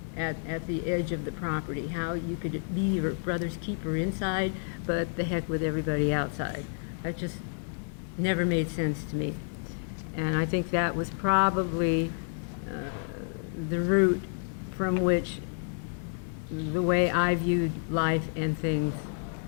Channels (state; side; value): silent; right; digital silence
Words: at the edge of the property, how you could be your brother's keeper inside, but the heck with everybody outside. That just never made sense to me. And I think that was probably the root from which the way I viewed life and things